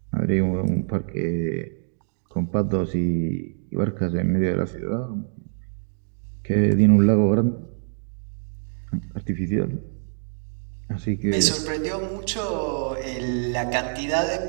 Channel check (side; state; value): left; silent; digital silence